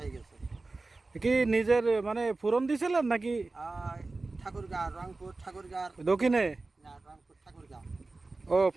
হয়ে গেছে। কি নিজের মানে ফুরন দিছিলেন নাকি? ঠাকুরগাঁ, রংপুর ঠাকুরগাঁ। দক্ষিণে? না, রংপুর ঠাকুরগাঁ। ও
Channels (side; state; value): left; quieter; 3.4 dB